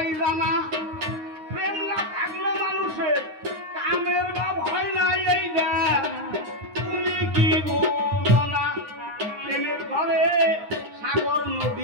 জানা প্রেম না থাকলো মানুষের কামের ভাব হয় না এইটা তুমি কি বলো না প্রেমের ঘরে সাগর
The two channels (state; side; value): late; left; 9.7 ms